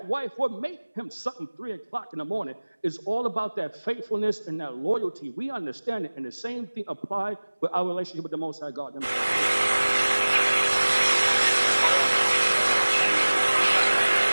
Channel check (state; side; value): inverted; both; correlation -1.00